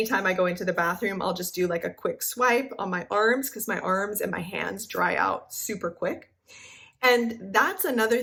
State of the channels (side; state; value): both; identical; correlation 1.00